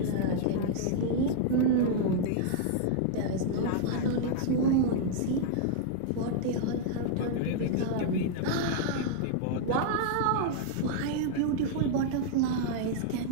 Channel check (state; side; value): different; both; correlation -0.01